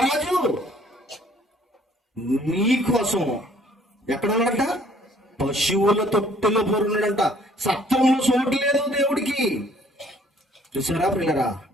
నీ కోసం ఎక్కడ ఉన్నాడంట? పశువుల తొట్టెలో పొరున్నాడంట. సత్రంలో చోటు లేదు దేవుడికి. చూసారా పిల్లరా,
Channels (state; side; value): normal; both; correlation 0.59